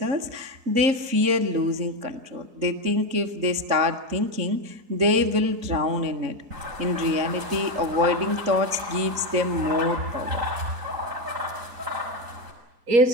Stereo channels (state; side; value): late; left; 3.7 ms